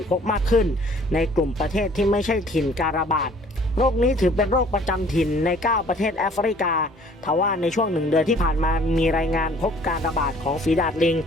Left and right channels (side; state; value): both; normal; correlation 0.55